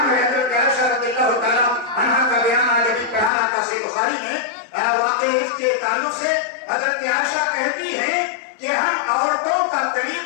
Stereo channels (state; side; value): drops out; right; at 3.3 s